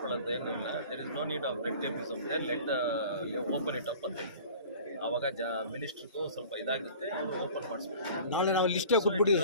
ಏನೂ ಇಲ್ಲ. There is no need of red tapeism there, let open it up ಅಂತ ಹೇಳ್ತೀವಿ. ಆವಾಗ ಮಿನಿಸ್ಟ್ರಿಗೂ ಸ್ವಲ್ಪ ಇದಾಗುತ್ತೆ, ಅವರು ಓಪನ್ ಮಾಡಿಸ್ಬೇಕು. ನಾಳೆ ನಾವು ಲಿಸ್ಟೇ ಕೊಟ್ಬಿಡಿ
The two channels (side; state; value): both; inverted; correlation -0.44